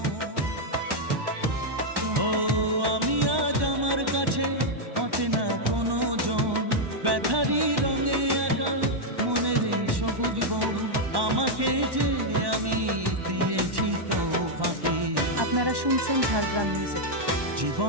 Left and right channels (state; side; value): late; left; 1.1 ms